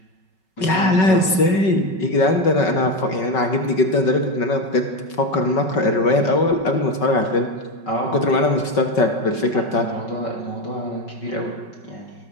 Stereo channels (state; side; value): late; right; 5.3 ms